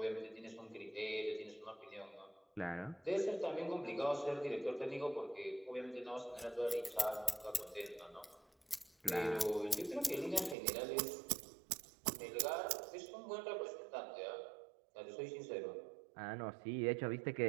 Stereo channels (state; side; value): drops out; left; at 10.6 s